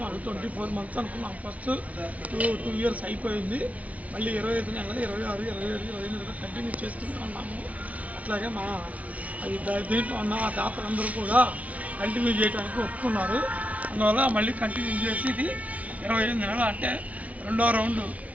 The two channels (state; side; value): late; left; 0.068 ms